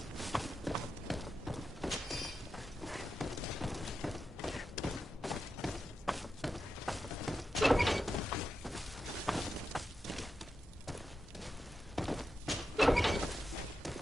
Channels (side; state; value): both; normal; correlation 0.89